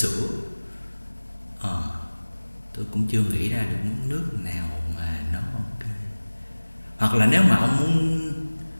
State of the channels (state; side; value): inverted; both; correlation -1.00